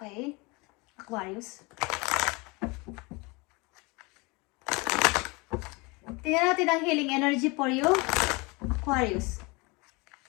Aquarius. Tingnan natin ang healing energy for you. Aquarius.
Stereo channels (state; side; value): quieter; right; 26.7 dB